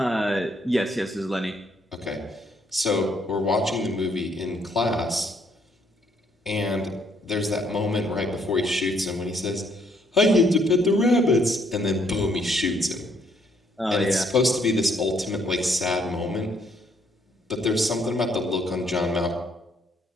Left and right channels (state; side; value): normal; both; correlation 0.69